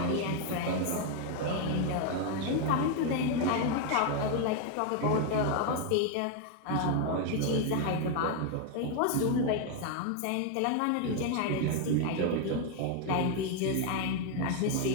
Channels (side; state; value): both; different; correlation 0.01